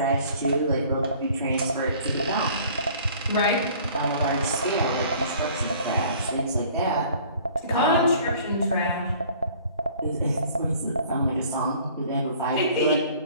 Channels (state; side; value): inverted; both; correlation -0.52